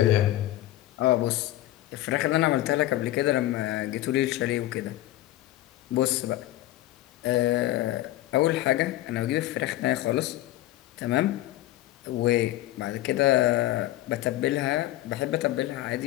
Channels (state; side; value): quieter; right; 15.3 dB